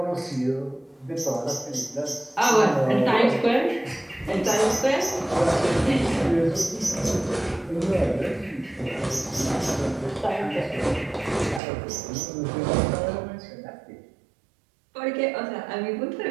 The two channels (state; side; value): drops out; left; at 11.6 s